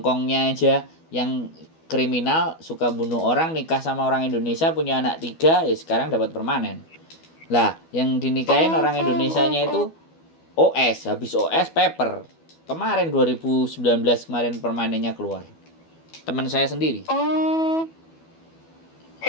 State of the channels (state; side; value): late; right; 12 ms